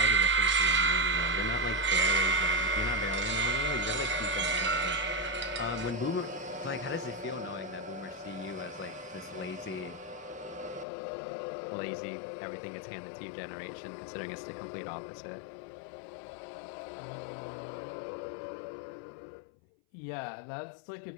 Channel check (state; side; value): drops out; right; at 10.9 s